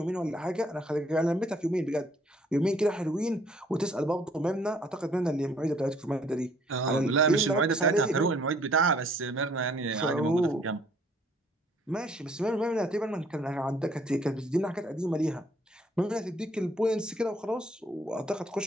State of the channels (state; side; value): normal; both; correlation 0.61